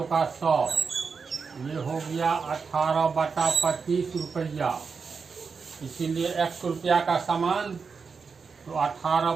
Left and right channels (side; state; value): left; quieter; 5.3 dB